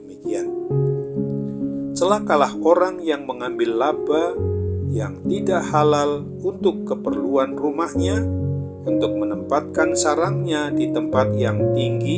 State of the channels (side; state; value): both; identical; correlation 1.00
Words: Celakalah orang yang mengambil laba yang tidak halal untuk keperluan rumahnya, untuk menempatkan sarangnya di tempat yang